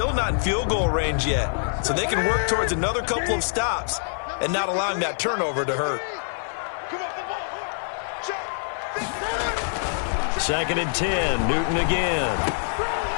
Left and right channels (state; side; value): silent; right; digital silence